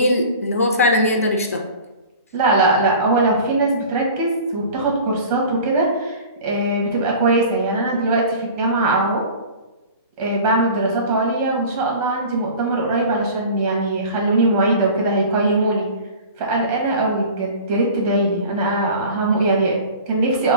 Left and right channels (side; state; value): both; inverted; correlation -0.40